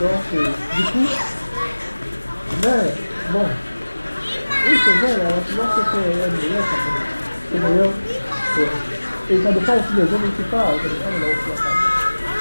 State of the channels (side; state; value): both; inverted; correlation -1.00